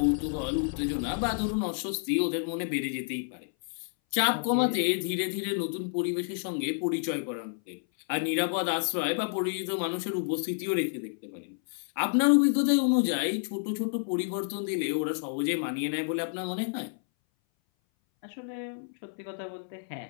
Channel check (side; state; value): right; silent; 58 dB below the other